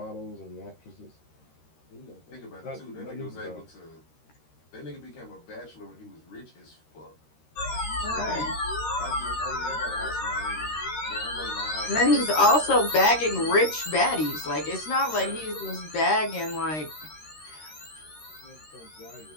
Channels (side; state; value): right; late; 13 ms